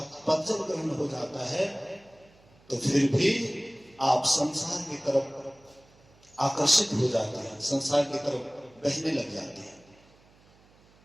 पद जब ग्रहण हो जाता है तो फिर भी आप संसार की तरफ आकर्षित हो जाते हैं, संसार की तरफ बहने लग जाते हैं।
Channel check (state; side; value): noise; right; hum, 29 dB below the sound